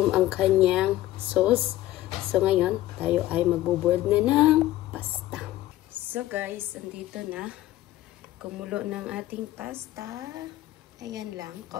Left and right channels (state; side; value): quieter; right; 15.3 dB